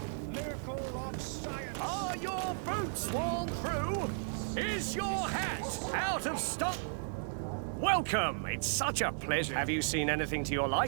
miracle of science. Are your boots worn through? Is your hat out of stock? Welcome! It's such a pleasure. Have you seen anything to your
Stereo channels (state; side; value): silent; left; digital silence